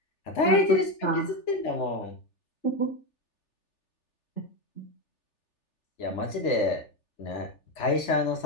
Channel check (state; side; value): late; right; 3.4 ms